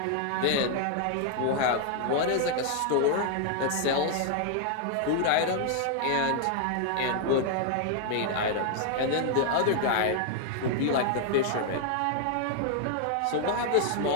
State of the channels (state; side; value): different; both; correlation 0.00